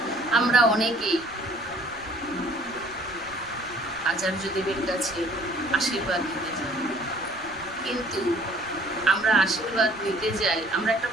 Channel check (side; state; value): right; noise; rumble, 23 dB below the sound